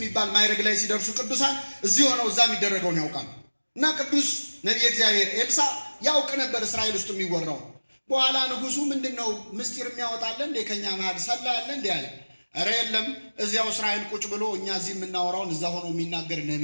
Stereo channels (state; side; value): inverted; both; correlation -1.00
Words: ማይረግ ላይ ሲደርሱ ቅዱሳን እዚህ ሆነው እዛ የሚደረገውን ያውቃሉ። እና ቅዱስ ነብይ እግዚአብሔር ኤልሳ ያውቅ ነበር እስራኤል ውስጥ የሚወራው። በኋላ ንጉሱ ምንድነው ምስጢር የሚያወጣለ እንደ ከኛ መሃል ሰላ ያለ እንደ ያለ፣ ኧረ የለም እዚያው እስራኤል ቁጭ ብሎ እኛ እዚህ የምናወራውን እዛ ሆኖ የሚናገር